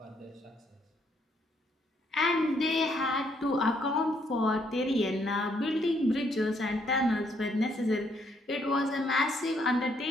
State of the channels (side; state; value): both; normal; correlation 0.71